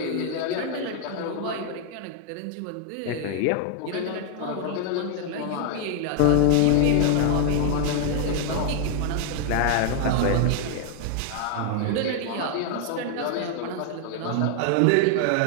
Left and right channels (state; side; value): different; both; correlation 0.00